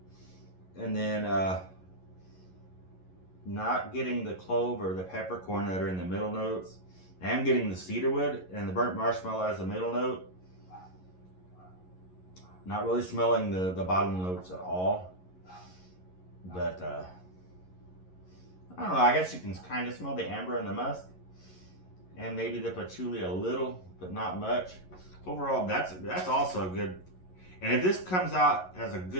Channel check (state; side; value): late; right; 11 ms